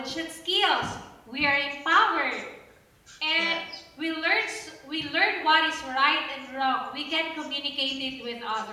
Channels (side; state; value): both; identical; correlation 1.00